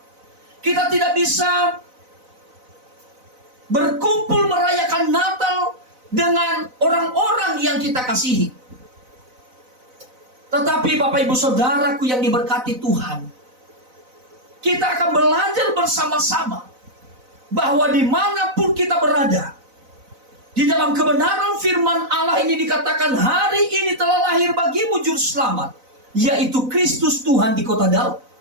Kita tidak bisa berkumpul merayakan Natal dengan orang-orang yang kita kasihi. Tetapi Bapak Ibu Saudaraku yang diberkati Tuhan, kita akan belajar bersama-sama bahwa dimanapun kita berada, di dalam kebenaran firman Allah ini dikatakan, hari ini telah lahir bagimu juru selamat, yaitu Kristus Tuhan di kota Daud.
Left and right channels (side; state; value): left; late; 4.0 ms